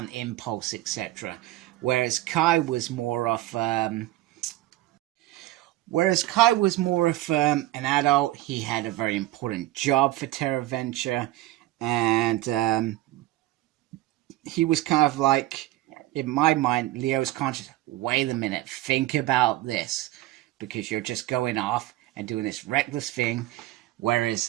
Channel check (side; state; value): left; quieter; 16.2 dB